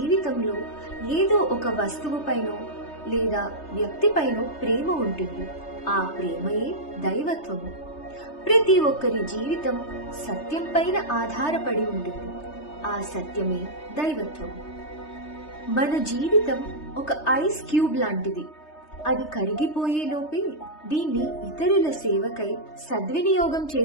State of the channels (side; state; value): right; late; 3.3 ms